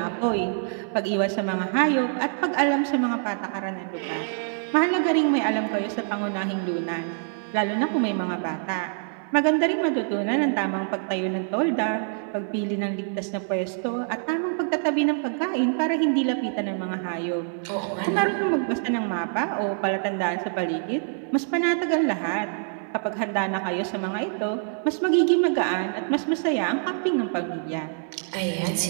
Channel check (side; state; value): left; silent; digital silence